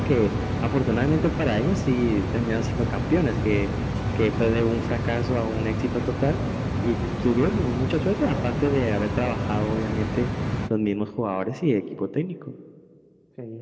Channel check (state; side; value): identical; both; correlation 1.00